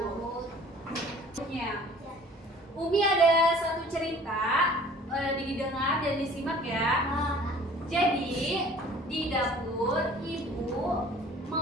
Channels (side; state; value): both; normal; correlation 0.50